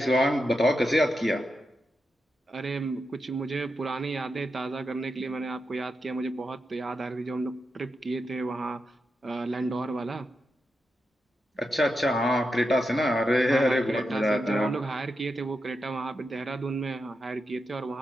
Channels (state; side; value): normal; both; correlation 0.87